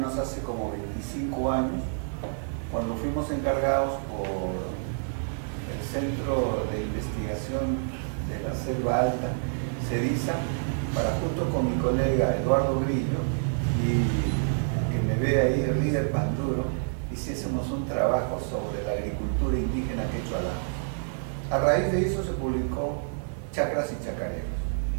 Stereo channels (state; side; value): silent; left; 59 dB below the other